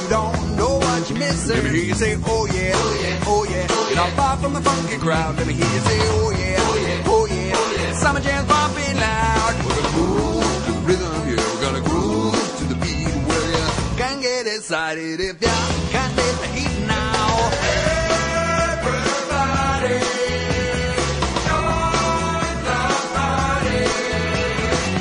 don't know what you're missing. Let me hear you say, oh yeah, oh yeah, oh yeah. You're not far from the funky crowd. Let me hear you say, oh yeah, oh yeah, oh yeah, oh yeah. Summer jams bumping loud. We're gonna move to the rhythm, yeah. We're gonna groove to the beat. Well, you can get excited if you can't take the heat now. Everybody.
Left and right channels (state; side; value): identical; both; correlation 1.00